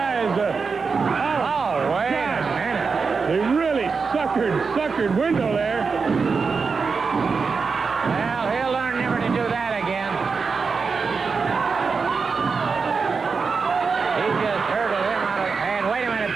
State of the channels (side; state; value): left; quieter; 5.0 dB